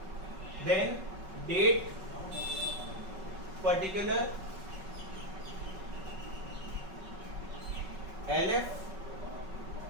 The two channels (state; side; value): late; left; 5.3 ms